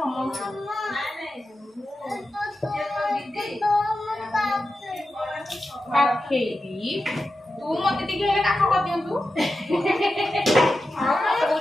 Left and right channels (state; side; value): normal; both; correlation 0.91